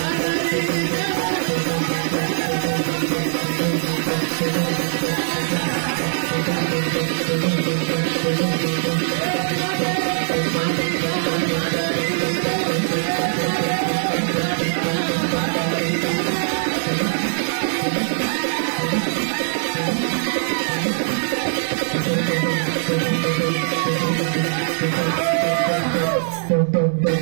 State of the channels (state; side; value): silent; left; digital silence